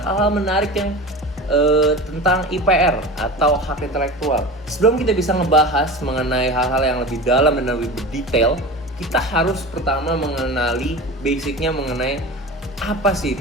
menarik yang tentang IPR atau hak intelektual. Sebelum kita bisa ngebahas mengenai hal-hal yang lebih dalam dan lebih berdetail, kita harus pertama mengenali basicnya mengenai apa sih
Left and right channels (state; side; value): normal; both; correlation 0.31